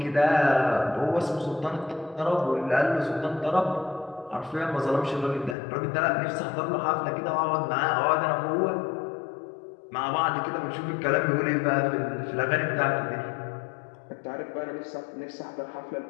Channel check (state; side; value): drops out; right; at 5.6 s